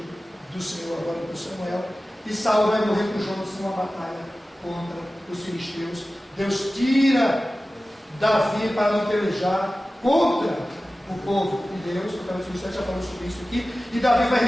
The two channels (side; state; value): both; normal; correlation 0.96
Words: do Senhor agora por Samuel. E Saul vai morrer com Jonas numa batalha contra os filisteus. Deus tira Davi para não pelejar contra o povo de Deus. O Filisteu já falou sobre isso aqui. E Davi vai